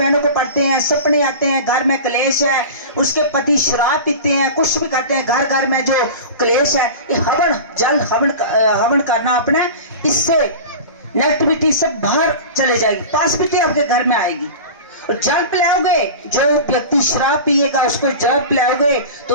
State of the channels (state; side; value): inverted; both; correlation -0.32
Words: को पड़ते हैं, सपने आते हैं, घर में क्लेश है, उसके पति शराब पीते हैं, कुछ भी करते हैं, घर घर में जो क्लेश है, ये हवन जल हवन करना अपने, इससे नेगेटिविटी सब बाहर चले जाएगी, पॉजिटिविटी आपके घर में आएगी। और जल पिलाओगे, जो व्यक्ति शराब पिएगा उसको जल पिलाओगे